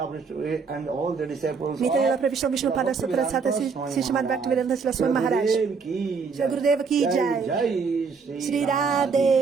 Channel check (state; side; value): quieter; left; 5.2 dB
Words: Pravishnu Vishnupada Sutra Shata Srimad Bhaktivedanta Srila Swami Maharaj. Jai Gurudeva ki Jai. Shri